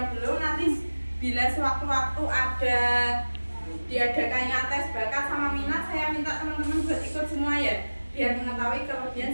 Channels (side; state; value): both; inverted; correlation -1.00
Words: belum, nanti bila sewaktu-waktu ada diadakannya tes bakat sama minat, saya minta teman-teman buat ikut semua ya, biar mengetahui